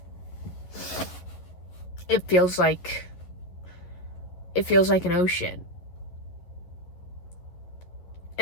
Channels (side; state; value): right; late; 11 ms